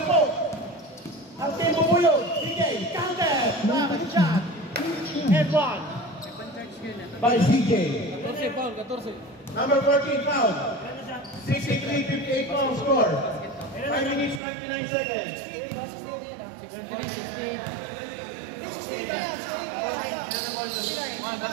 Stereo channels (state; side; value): drops out; left; at 14.4 s